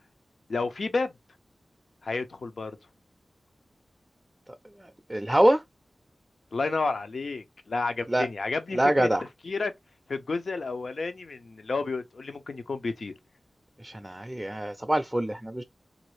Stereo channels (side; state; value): both; normal; correlation 0.96